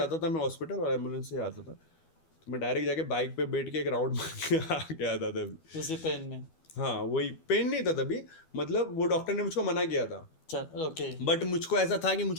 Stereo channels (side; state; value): right; late; 12 ms